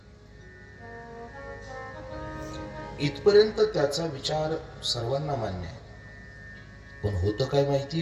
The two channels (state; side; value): identical; both; correlation 1.00